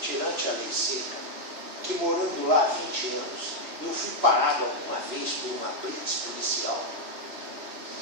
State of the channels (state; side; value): late; left; 3.0 ms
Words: tirante a lei seca, que morando lá há 20 anos, eu fui parado alguma vez por uma blitz policial?